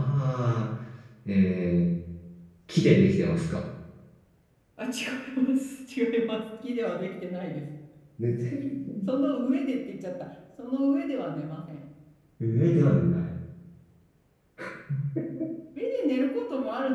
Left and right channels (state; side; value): identical; both; correlation 1.00